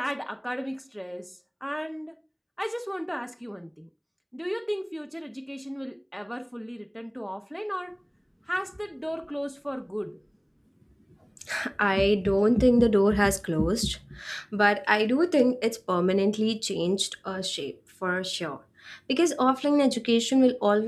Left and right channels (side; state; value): both; identical; correlation 1.00